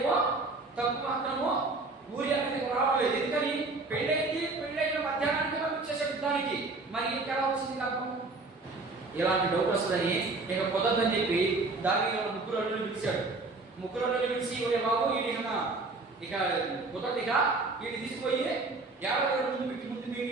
తప్పు మాత్రము ఊరి అనేది రావలేదు. ఎందుకని పెళ్ళైన మధ్యాహ్నానికి పంపించేసాడు యుద్ధానికి. మరి ఇంకెలా వచ్చింది లాభం? ఇలాంటి డౌట్ వస్తుందని ఇక కుదరదని చెప్పి దావీదు ముగ్గురు అల్లుళ్ళు పిలిచాడు. ముగ్గురు అల్లుళ్ళు పిలిచి ఒరే బాబు ఇది ఇక కుదరదిగా వీడిని తీసుకుపోయి 50 రోజుల ముందు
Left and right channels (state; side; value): quieter; left; 3.5 dB